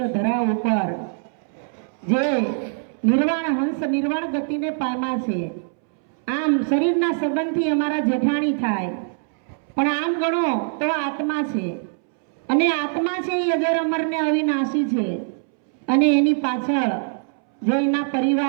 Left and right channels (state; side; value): silent; left; 64 dB below the other